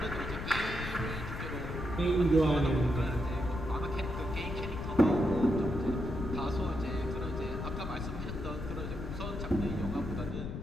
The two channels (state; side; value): noise; left; rumble, 6 dB below the sound